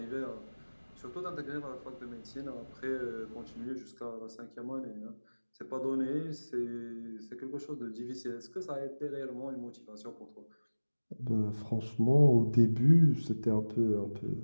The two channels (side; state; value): both; inverted; correlation -1.00